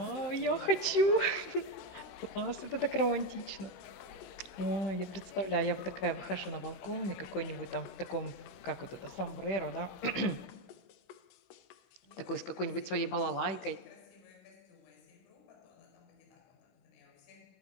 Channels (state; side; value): late; right; 15 ms